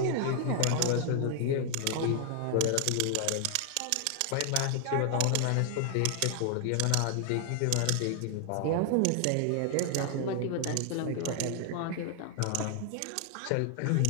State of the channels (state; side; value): different; both; correlation 0.00